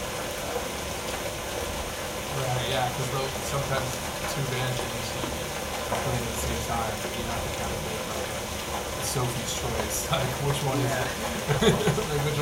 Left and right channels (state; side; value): identical; both; correlation 1.00